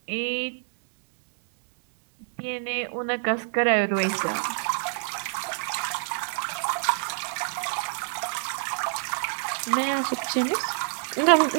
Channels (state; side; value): silent; left; digital silence